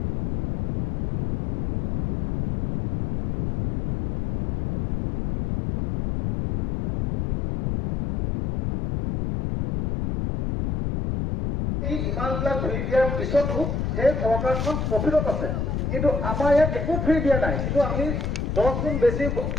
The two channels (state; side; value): noise; left; rumble, 1 dB below the sound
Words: ইমানবিলাক ফ্ৰী দিয়াৰ পিছতো সেই চৰকাৰখন প্ৰফিটত আছে কিন্তু আমাৰ ইয়াত একো ফ্ৰী দিয়া নাই কিন্তু আমি 10 গুণ বেছি